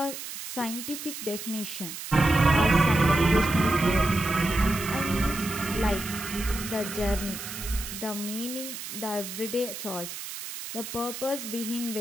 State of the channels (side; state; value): right; noise; hiss, 9 dB below the sound